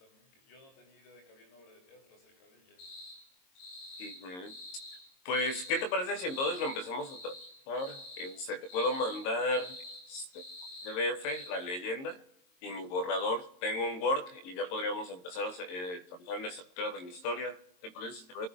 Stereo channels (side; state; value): right; late; 22 ms